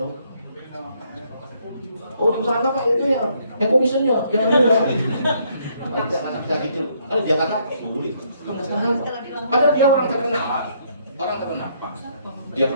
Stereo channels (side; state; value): both; inverted; correlation -0.69